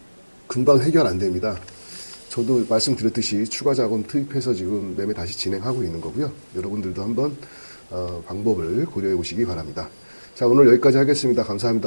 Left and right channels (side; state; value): both; inverted; correlation -1.00